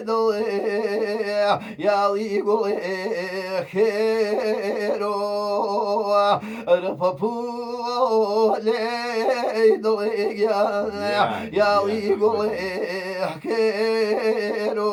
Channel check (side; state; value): both; identical; correlation 1.00